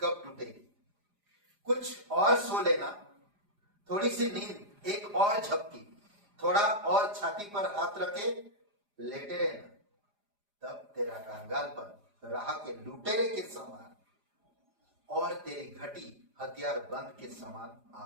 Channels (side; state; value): left; late; 4.9 ms